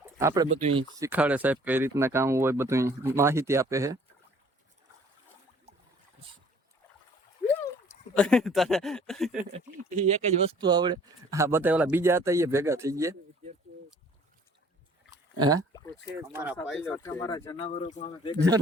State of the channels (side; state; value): both; normal; correlation 0.54